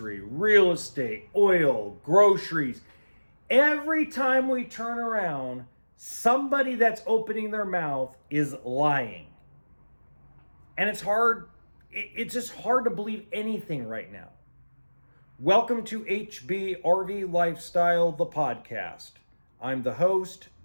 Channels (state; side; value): inverted; both; correlation -1.00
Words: real estate, oil, groceries. Every time we turn around, somebody that's opening their mouth is lying. And it's just hard to believe anything right now. Welcome to HB RV Lifestyle, the podcast. I'm the host,